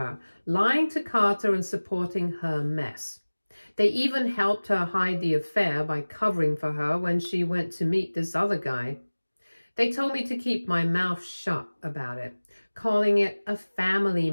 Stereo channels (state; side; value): inverted; both; correlation -1.00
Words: lying to Carter and supporting her mess. They even helped her hide the affair by covering for her when she went to meet this other guy. They told me to keep my mouth shut about it, calling it a family